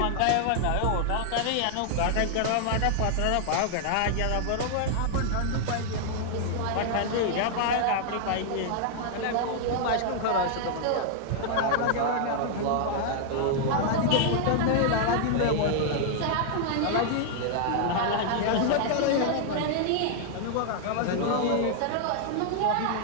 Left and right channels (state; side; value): different; both; correlation 0.00